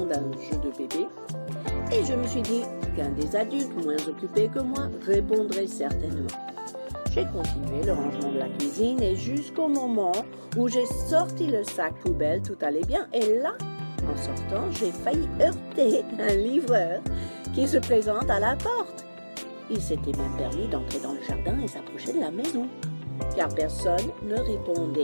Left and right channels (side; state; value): both; inverted; correlation -1.00